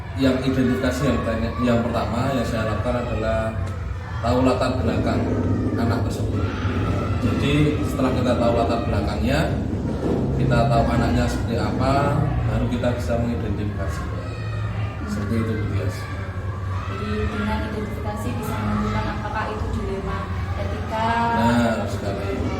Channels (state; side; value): identical; both; correlation 1.00